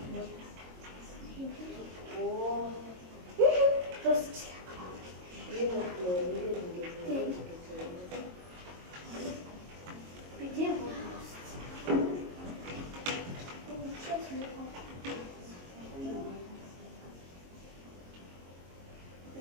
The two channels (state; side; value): late; left; 22 ms